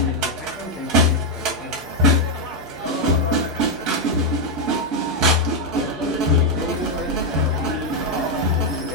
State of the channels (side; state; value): both; normal; correlation 0.02